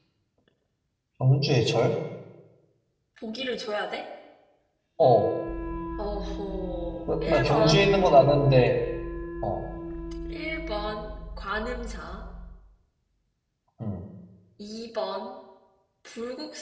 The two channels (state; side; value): identical; both; correlation 1.00